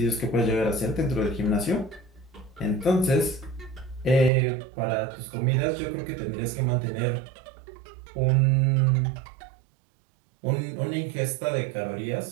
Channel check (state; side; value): drops out; left; at 4.3 s